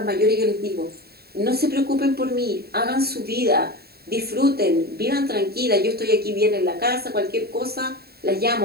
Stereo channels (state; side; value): late; left; 0.46 ms